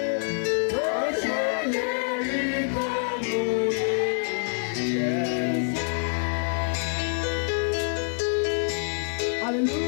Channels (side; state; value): right; silent; digital silence